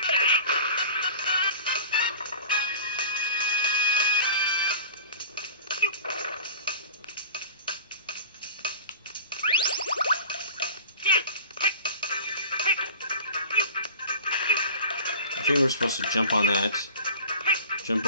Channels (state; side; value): inverted; both; correlation -0.39